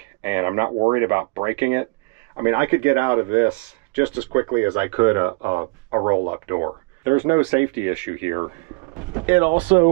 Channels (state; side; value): quieter; left; 30.7 dB